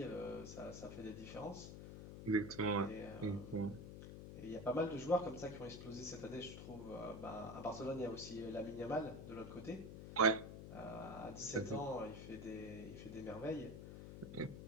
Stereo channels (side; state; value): left; noise; hum, 9 dB below the sound